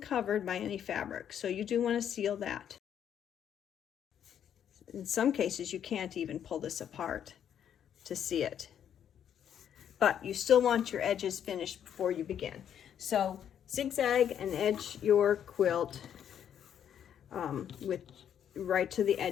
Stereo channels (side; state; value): right; quieter; 9.3 dB